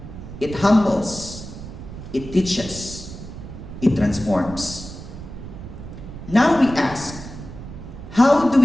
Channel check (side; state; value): right; noise; rumble, 12 dB below the sound